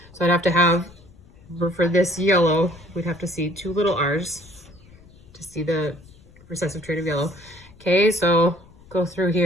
so I'd have to have, for this yellow, we'd have to see 2 little r's to see the recessive trait of yellow. Okay, so go through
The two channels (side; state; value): left; noise; rumble, 24 dB below the sound